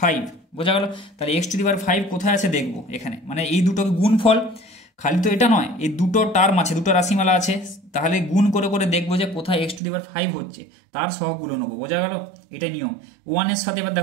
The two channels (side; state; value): left; drops out; at 9.8 s